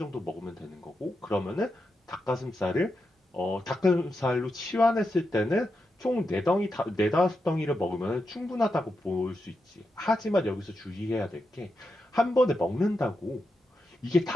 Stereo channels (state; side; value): normal; both; correlation 0.87